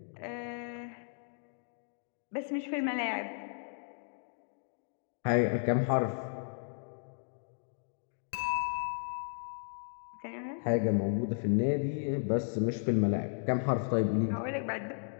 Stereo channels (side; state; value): right; silent; digital silence